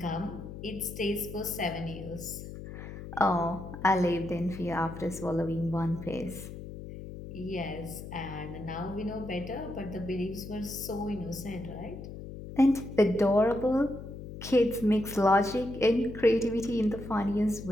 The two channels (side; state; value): left; noise; hum, 11 dB below the sound